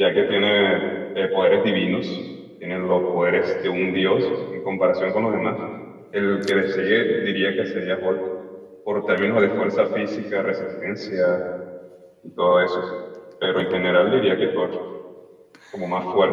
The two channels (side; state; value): both; identical; correlation 1.00